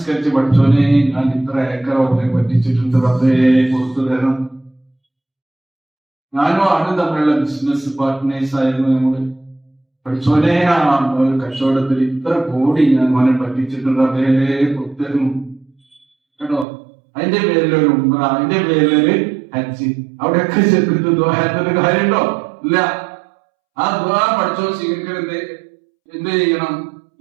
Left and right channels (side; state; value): left; drops out; at 16.7 s